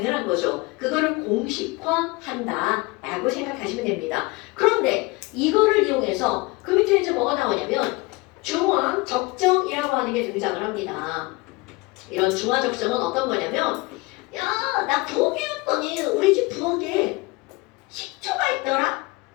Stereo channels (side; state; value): right; quieter; 23.8 dB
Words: 거죠. 그거를 공식화한다 라고 생각하시면 됩니다. 그런데 이거를 이용해서 그 밑에 이제 뭐가 나오냐면 중화 적정이라고 하는 게 등장을 합니다. 이런 중화 적정은 어떤 거냐면 야, 나 부엌이었더니 우리 집 부엌에 식초가 있더라?